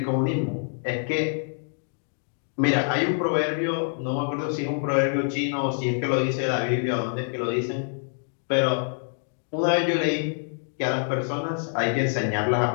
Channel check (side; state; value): right; silent; 61 dB below the other